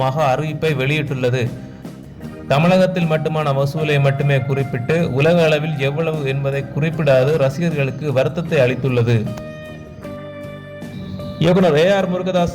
அறிவிப்பை வெளியிட்டுள்ளது. தமிழகத்தில் மட்டுமான வசூலை மட்டுமே குறிப்பிட்டு உலக அளவில் எவ்வளவு என்பதை குறிப்பிடாது ரசிகர்களுக்கு வருத்தத்தை அளித்துள்ளது. இயக்குனர் ஏஆர் முருகதாஸ்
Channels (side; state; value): both; identical; correlation 1.00